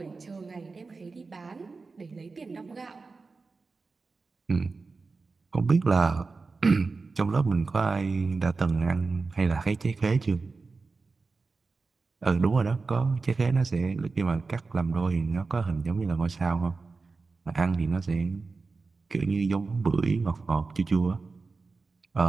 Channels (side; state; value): left; quieter; 4.1 dB